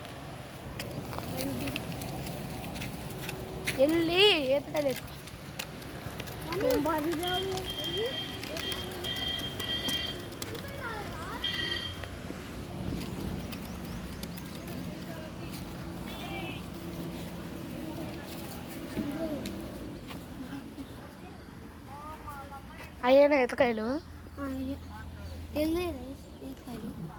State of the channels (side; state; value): both; identical; correlation 1.00